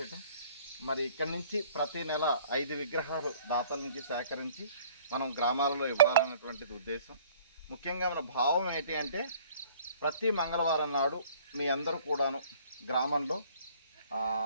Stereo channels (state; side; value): inverted; both; correlation -0.55